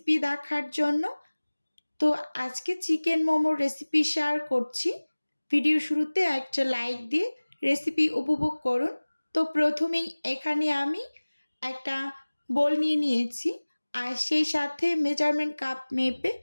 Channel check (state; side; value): inverted; both; correlation -1.00